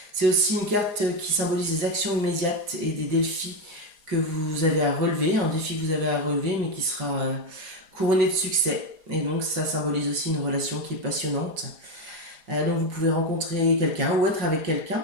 C'est aussi une carte qui symbolise des actions immédiates et des défis que vous avez à relever, un défi que vous avez à relever, mais qui sera couronné de succès. Et donc, ça symbolise aussi une relation qui est passionnante. Donc, vous pouvez rencontrer quelqu'un ou être avec quelqu'un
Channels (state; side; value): late; left; 4.9 ms